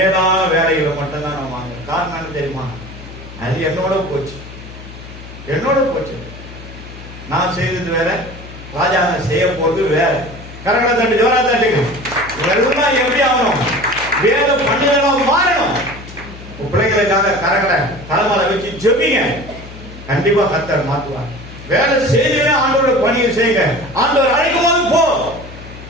வேலைகளை மட்டும்தான் நான் வாங்க. காரணம் என்ன தெரியுமா? அது என்னோட போச்சு. நான் செய்தது வேற, ராஜாங்க செய்ய போறது வேற. கரங்களை தட்டு, ஜோரா தட்டுங்க. இதெல்லாம் எப்படி ஆகணும்? வேலை பண்ணுதெல்லாம் மாறணும். பிள்ளைங்களுக்காக கரங்களை தலைமையில வச்சு ஜெபிங்க. கண்டிப்பா கர்த்தர் மாற்றுவார். வேலை செய்தீங்கன்னா ஆண்டோட பணியை செய்யுங்க. ஆண்டவர் அழைக்கும் போது போ,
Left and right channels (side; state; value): left; noise; hum, 15 dB below the sound